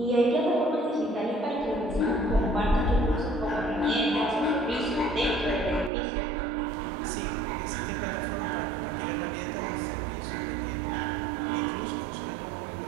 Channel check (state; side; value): drops out; left; at 5.9 s